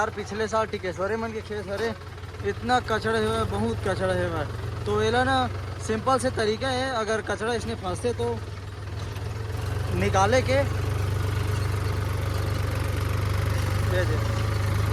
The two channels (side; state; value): both; identical; correlation 1.00